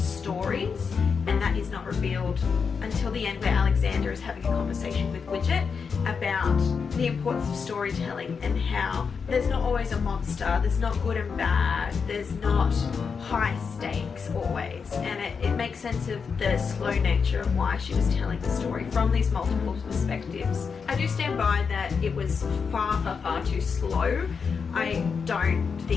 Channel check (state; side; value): quieter; right; 5.7 dB